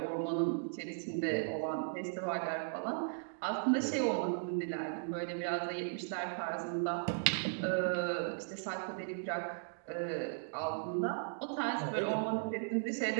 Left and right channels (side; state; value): left; silent; digital silence